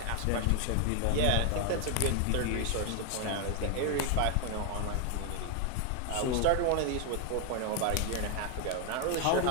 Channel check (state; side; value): different; both; correlation 0.00